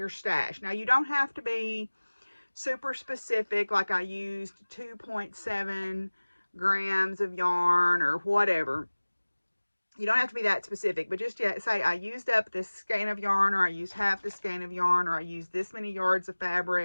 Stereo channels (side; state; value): both; inverted; correlation -1.00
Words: stash. Now you don't have to be super specific, like I used 2.7 grams of yarn or whatever. You don't have to be that specific, but just say I used up this skein of yarn, or I used half the skein of yarn, or I used this many yards of